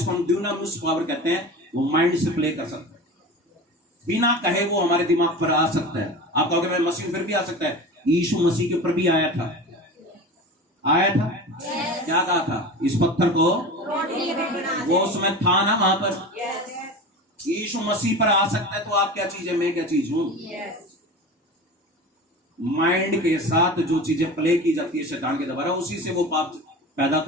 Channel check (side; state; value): both; normal; correlation 0.32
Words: हम ड्यूनामिस पावर कहते हैं, वो माइंड से प्ले कर सकता है, बिना कहे वो हमारे दिमाग पर आ सकता है। आप कहोगे मैं मसीह फिर भी आ सकता है, यीशु मसीह के ऊपर भी आया था, आया था। क्या कहा था? इस पत्थर को, वो उसमें था ना वहां पर। यीशु मसीह पर आ सकता है तो आप क्या चीज है, मैं क्या चीज हूं। माइंड के साथ जो चीजें प्ले की जाती है शैतान के द्वारा, उसी से वो पाप पैदा